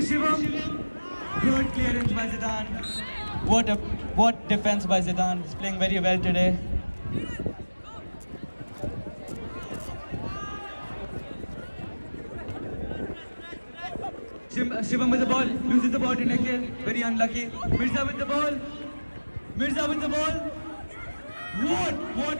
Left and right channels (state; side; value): inverted; both; correlation -1.00